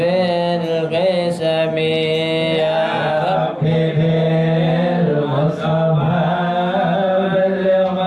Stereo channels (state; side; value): identical; both; correlation 1.00